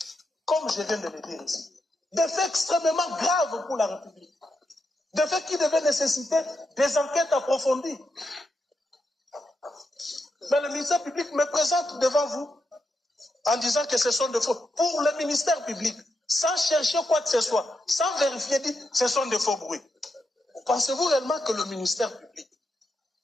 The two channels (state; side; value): normal; both; correlation 0.84